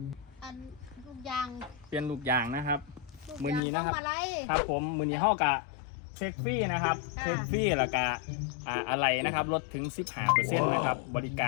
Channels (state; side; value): drops out; right; at 3.6 s